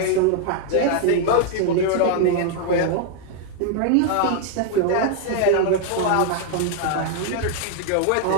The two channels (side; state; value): both; different; correlation 0.00